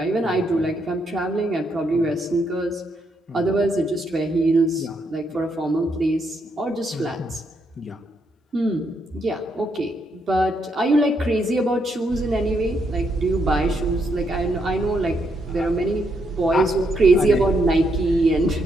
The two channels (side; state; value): both; normal; correlation 0.77